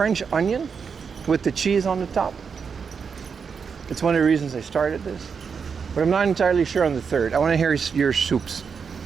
onion with the cheese on the top. It's one of the reasons I started this, but I'm not entirely sure on the third. I want to hear your soups.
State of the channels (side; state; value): left; quieter; 6.0 dB